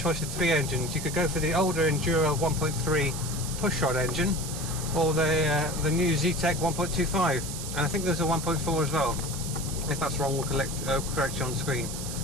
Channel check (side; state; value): right; noise; hiss, 8 dB below the sound